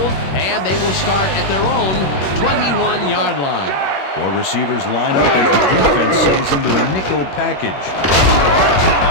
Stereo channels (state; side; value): late; right; 21 ms